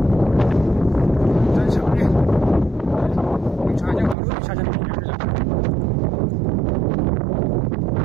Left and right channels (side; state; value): left; drops out; at 4.2 s